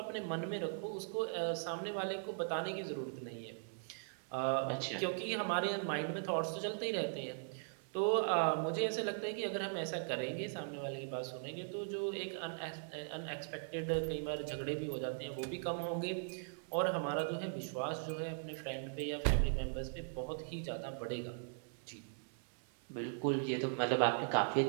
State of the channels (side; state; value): left; silent; 51 dB below the other